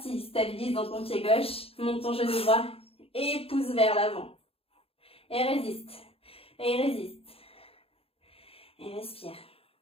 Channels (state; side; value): late; right; 0.28 ms